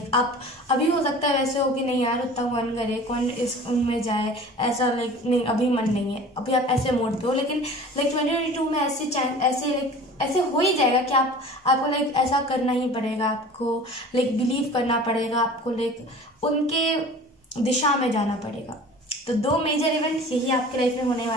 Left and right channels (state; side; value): normal; both; correlation 0.42